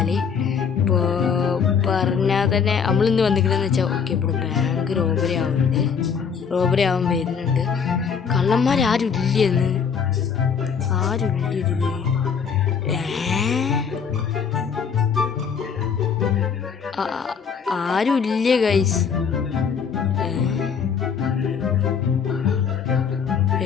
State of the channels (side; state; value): right; quieter; 6.5 dB